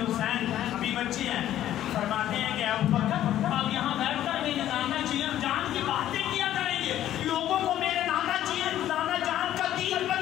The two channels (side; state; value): right; quieter; 12.3 dB